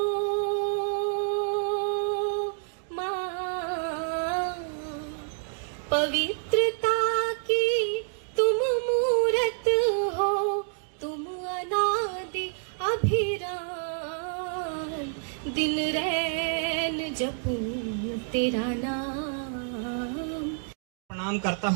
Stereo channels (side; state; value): left; silent; digital silence